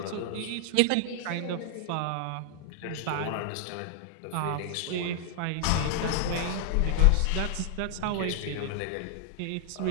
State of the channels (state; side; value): different; both; correlation -0.01